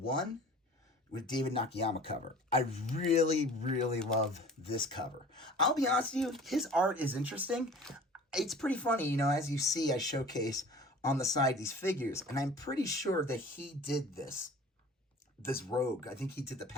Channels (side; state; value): both; normal; correlation 0.44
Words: with David Nakayama cover. I really, really love this cover. I'll be honest with you, his art is interesting. It's pretty funny, you know, as you see, I showcase on the side these figures, and I'm pretty sure that he did this Rogue. I think he did the